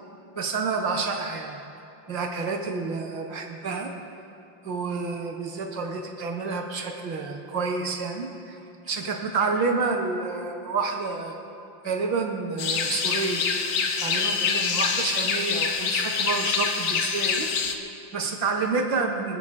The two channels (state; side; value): late; right; 5.7 ms